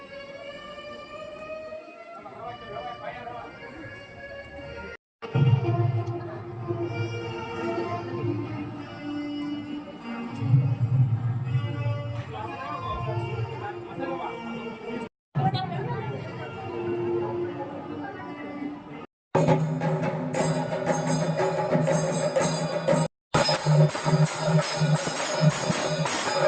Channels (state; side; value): identical; both; correlation 1.00